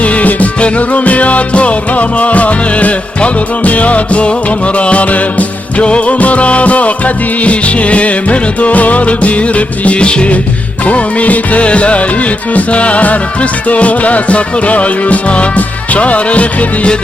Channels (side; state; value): both; normal; correlation 0.84